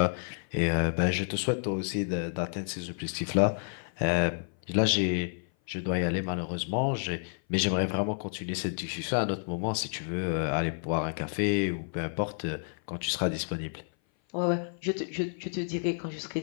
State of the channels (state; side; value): silent; right; 56 dB below the other